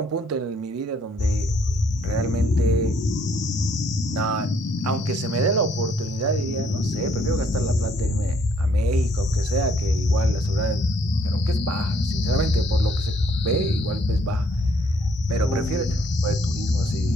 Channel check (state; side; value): normal; both; correlation 0.66